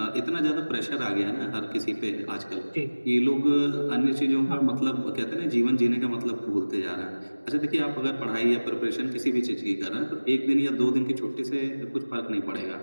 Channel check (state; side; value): inverted; both; correlation -1.00